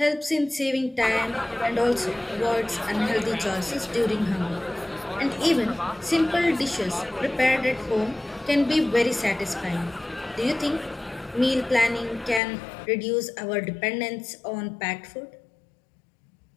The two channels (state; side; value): drops out; right; at 12.4 s